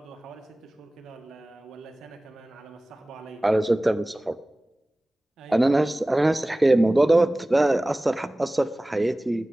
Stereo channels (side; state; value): both; normal; correlation 0.98